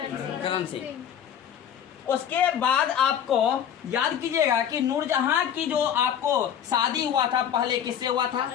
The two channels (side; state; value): right; quieter; 9.1 dB